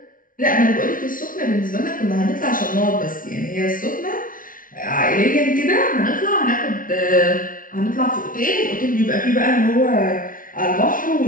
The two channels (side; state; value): right; late; 0.39 ms